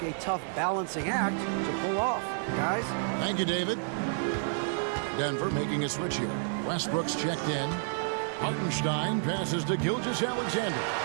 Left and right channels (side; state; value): left; silent; 58 dB below the other